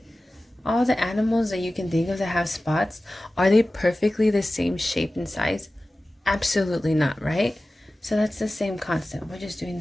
All the animals that you can think of that have spots, are they perfectly the same shape and size? Absolutely not, right? So that's the same concept. We're just doing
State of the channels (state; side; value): normal; both; correlation 0.96